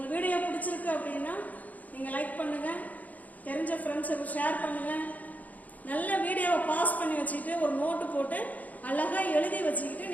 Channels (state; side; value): late; right; 0.077 ms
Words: வீடியோ பிடிச்சிருக்கு அப்படின்னா நீங்க லைக் பண்ணுங்க, தெரிஞ்ச ஃப்ரெண்ட்ஸுக்கு ஷேர் பண்ணுங்க. நல்ல வீடியோவை பாஸ் பண்ணி வச்சுக்கிட்டு ஒரு நோட்டு போட்டு அழகா எழுதி வச்சுக்கிட்டு